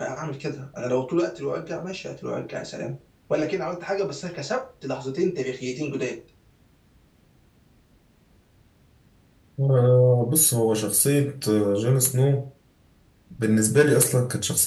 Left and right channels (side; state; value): both; identical; correlation 1.00